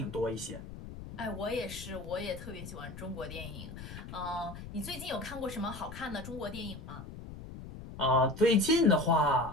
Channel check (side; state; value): left; noise; rumble, 12 dB below the sound